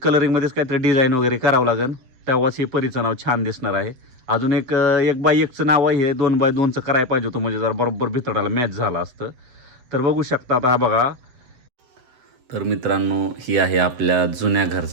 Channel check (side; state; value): left; late; 7.8 ms